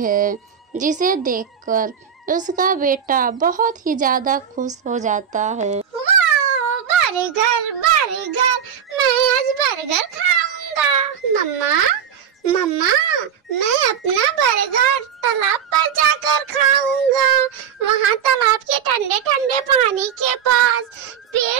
जिसे देखकर उसका बेटा बहुत ही ज्यादा खुश हो जाता है। बर्गर बर्गर, मैं आज बर्गर खाऊंगा। मम्मा मम्मा, मैं अपना बर्गर तालाब पर जाकर खाऊंगा। वहाँ तालाब के ठंडे ठंडे पानी के पास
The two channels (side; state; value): left; quieter; 8.2 dB